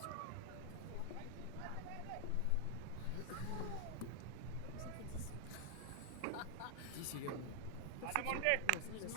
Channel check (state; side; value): different; both; correlation 0.00